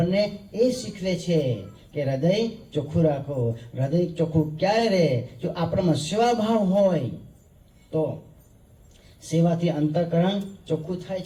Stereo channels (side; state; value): both; identical; correlation 1.00